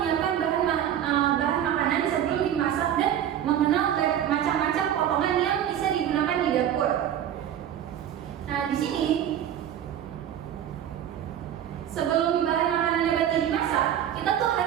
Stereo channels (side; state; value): left; quieter; 10.3 dB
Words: bahan makanan sebelum dimasak dan mengenal macam-macam potongan yang bisa digunakan di dapur. Nah, di sini sebelum bahan makanan nabati dimasak, kita tuh